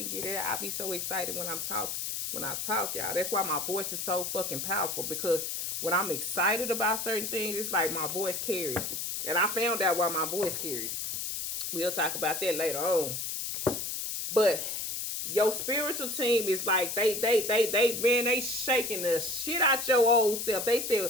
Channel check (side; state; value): left; noise; hiss, 3 dB below the sound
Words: get it. I be so excited when I'm talk. When I talk, y'all. That's why my voice is so fucking powerful. Because when I'm excited about certain things, it's like my voice carries. And I found out why my voice carries. We'll talk about that later on. But your spiritual team is like they shaking the shit out your old self. They